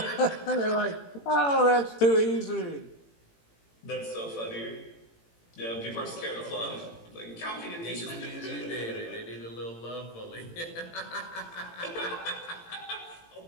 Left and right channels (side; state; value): right; late; 18 ms